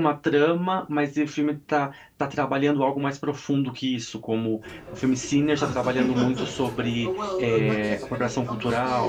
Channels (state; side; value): identical; both; correlation 1.00